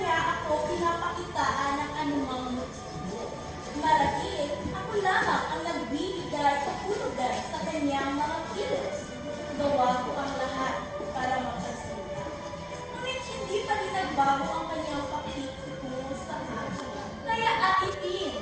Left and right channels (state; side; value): identical; both; correlation 1.00